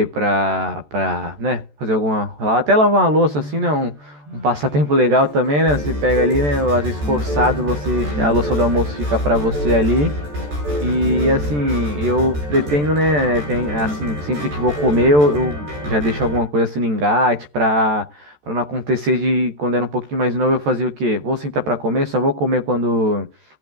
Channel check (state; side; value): late; left; 14 ms